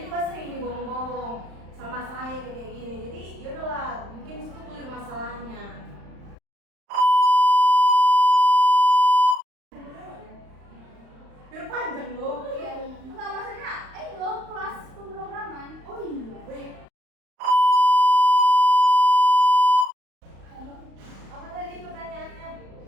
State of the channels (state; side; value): late; left; 35 ms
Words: juga sering ini bohong-bohong sama saya kayak gini. Jadi yaudahlah mungkin situ clear masalahnya. Biar panjang loh. Iya. Enggak maksudnya, lo kelas pemrograman. Oh iya.